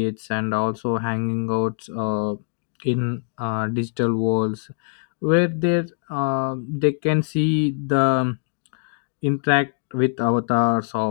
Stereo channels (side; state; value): right; silent; digital silence